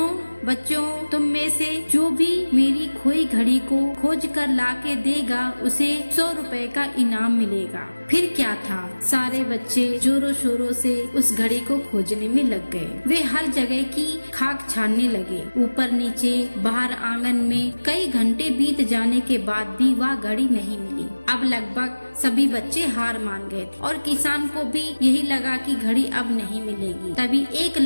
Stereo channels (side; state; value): both; inverted; correlation -1.00